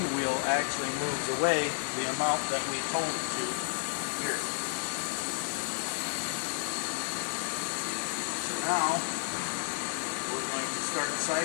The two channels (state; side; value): silent; right; 57 dB below the other